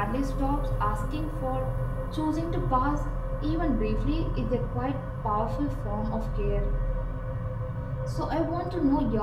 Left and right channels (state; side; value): identical; both; correlation 1.00